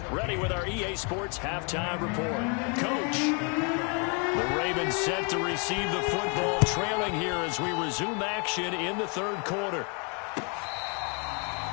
ready with our EA Sports Halftime Report. Coach, the Ravens set to receive the football, trailing here as we resume action in the 3rd quarter.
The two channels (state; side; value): quieter; right; 36.1 dB